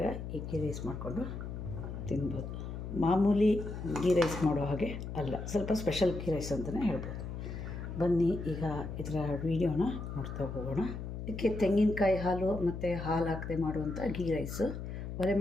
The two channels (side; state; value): left; noise; hum, 7 dB below the sound